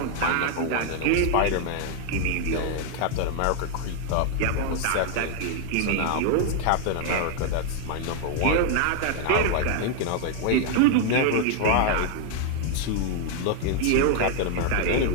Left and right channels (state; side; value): different; both; correlation 0.00